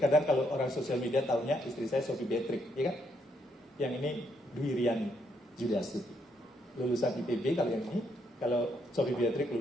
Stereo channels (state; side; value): normal; both; correlation 0.75